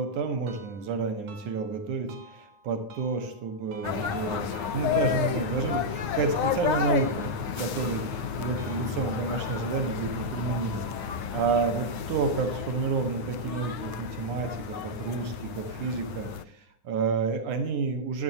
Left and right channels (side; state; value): left; late; 9.8 ms